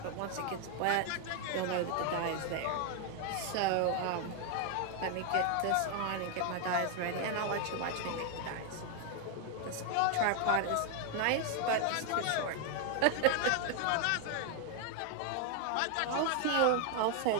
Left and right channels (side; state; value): both; different; correlation 0.00